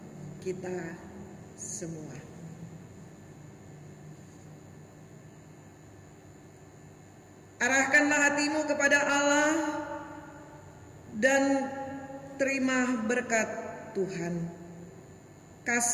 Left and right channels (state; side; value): identical; both; correlation 1.00